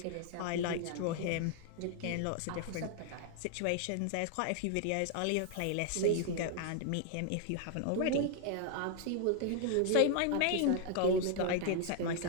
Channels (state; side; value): different; both; correlation 0.00